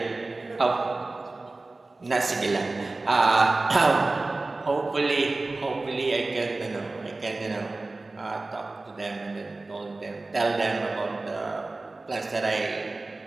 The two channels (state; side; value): quieter; left; 3.2 dB